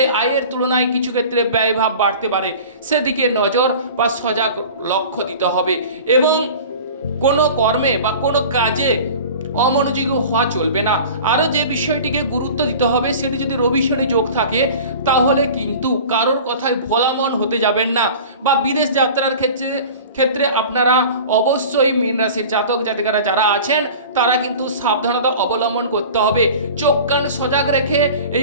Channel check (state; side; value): inverted; both; correlation -0.39